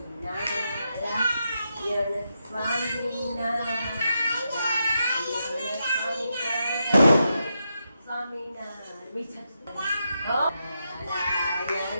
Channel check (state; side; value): inverted; both; correlation -0.84